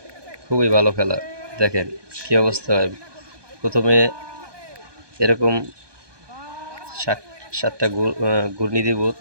খুবই ভালো খেলা। দেখেন কি অবস্থা হয়। প্রথমে এরকম সাত- সাতটা ঘূর্ণি দিব,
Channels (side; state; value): left; late; 1.2 ms